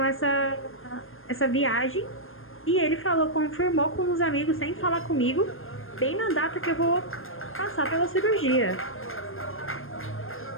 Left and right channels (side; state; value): right; late; 0.60 ms